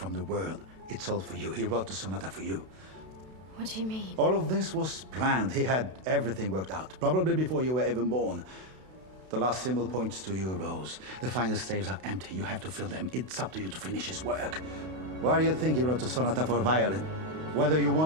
the world, it's all for you. He wrote the sonata for you. What do you mean? All of this was planned. He had everything worked out, probably before you were even born. The last symbol points to you, Rose. The final staves are empty. You have to fill them. It's up to you to finish his work. Why do you think he wrote the sonata for violin? Whether you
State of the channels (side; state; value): left; late; 32 ms